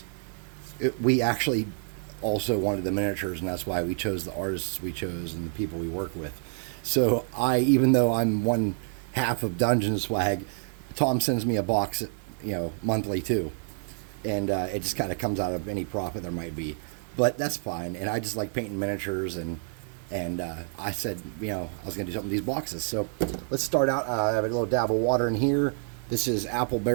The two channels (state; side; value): silent; left; digital silence